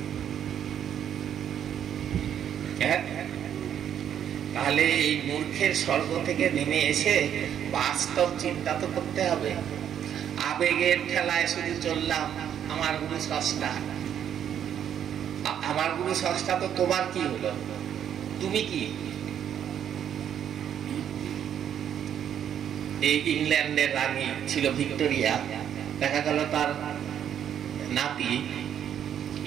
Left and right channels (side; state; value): left; quieter; 9.4 dB